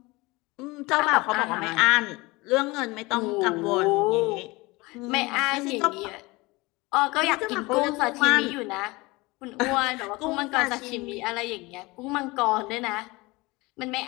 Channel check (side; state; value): right; quieter; 23.1 dB